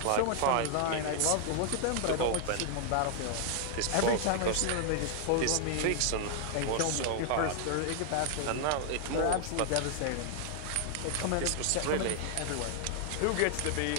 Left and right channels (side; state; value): both; different; correlation 0.00